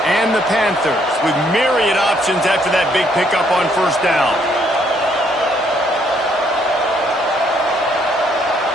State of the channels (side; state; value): both; normal; correlation 0.69